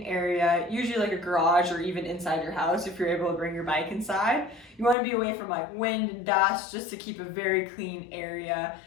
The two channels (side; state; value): right; drops out; at 5.0 s